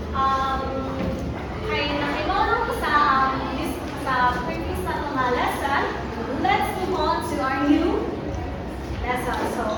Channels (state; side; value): identical; both; correlation 1.00